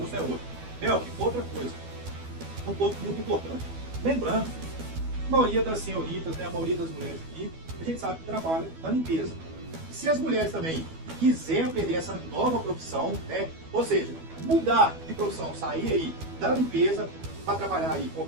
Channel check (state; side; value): late; left; 12 ms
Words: é outro. Melk, outra coisa, um ponto muito importante. Lembrando, a maioria das senhoritas, né, a maioria das mulheres aqui, a gente sabe que trabalha na limpeza. Se as mulheres também quiserem aprender essa nova profissão, né, ou seja, mudar de profissão, sair aí da limpeza para trabalhar aí